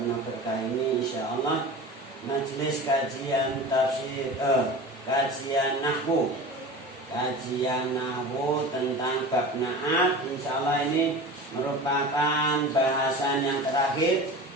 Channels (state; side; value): normal; both; correlation 0.34